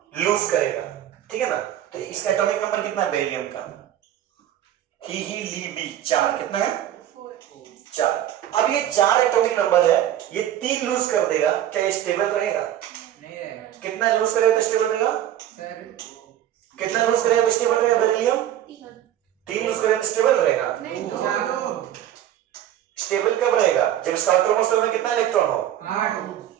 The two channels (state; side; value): quieter; left; 11.6 dB